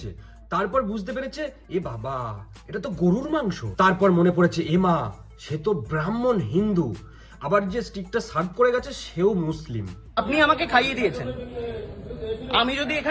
তারপর বুঝতে পেরেছে এ বাবা এটা তো গরুর মাংস। তারপর মনে পড়েছে এ মা সে তো ব্রাহ্মণ হিন্দু, আবার যে স্টিকটা সার্ভ করে গেছে সেও মুসলিম। আপনি আমাকে খাইয়ে দিয়েছেন। আমি যদি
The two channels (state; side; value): identical; both; correlation 1.00